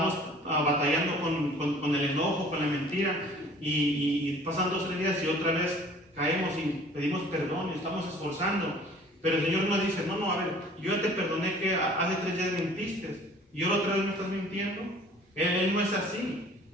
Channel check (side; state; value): both; normal; correlation 0.50